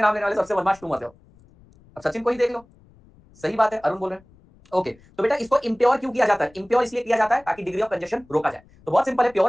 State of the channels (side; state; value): left; noise; rumble, 28 dB below the sound